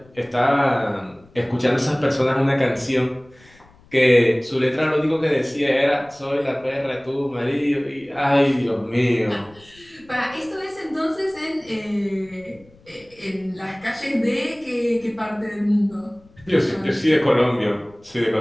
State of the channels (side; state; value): left; noise; rumble, 28 dB below the sound